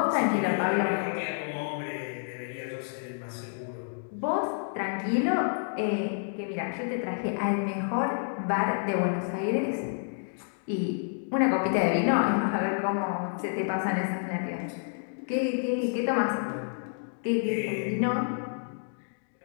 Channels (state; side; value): silent; right; digital silence